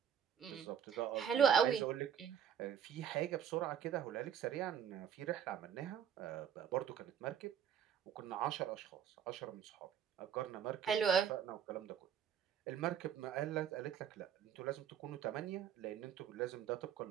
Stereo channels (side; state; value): left; quieter; 8.6 dB